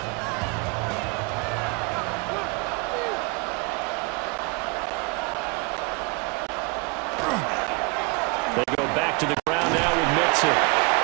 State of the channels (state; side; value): quieter; left; 29.7 dB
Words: They go back to the ground now with Mixon.